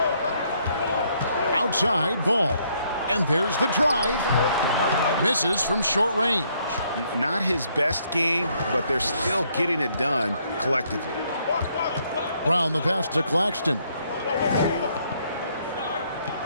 Outside ball. And there's the drive. Misses from short range. Not his best game, but they're still getting it done collectively. Brown the pass to Claxton.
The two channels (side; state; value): both; inverted; correlation -0.70